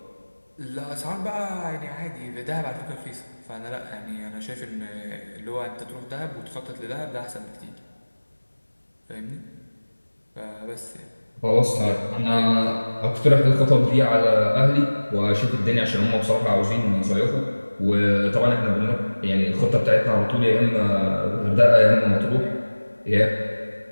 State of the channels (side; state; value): both; inverted; correlation -1.00